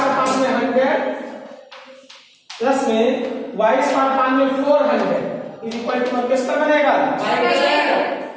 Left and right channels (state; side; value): identical; both; correlation 1.00